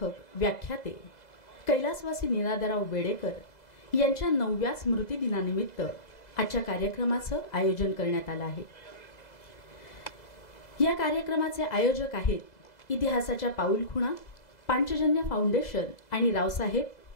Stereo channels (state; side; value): late; right; 2.0 ms